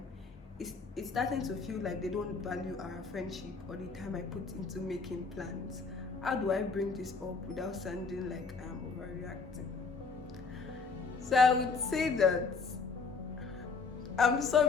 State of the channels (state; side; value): quieter; right; 4.6 dB